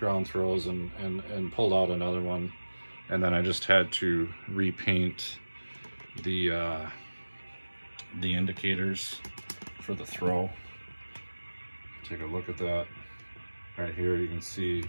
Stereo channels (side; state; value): both; inverted; correlation -1.00